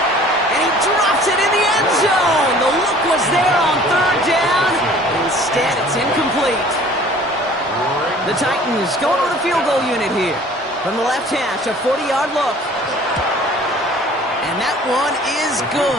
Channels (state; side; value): normal; both; correlation 0.50